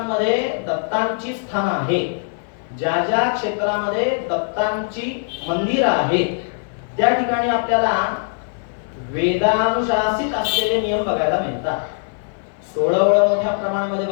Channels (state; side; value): silent; right; 59 dB below the other